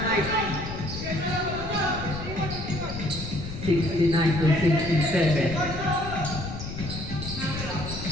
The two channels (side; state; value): left; noise; rumble, 9 dB below the sound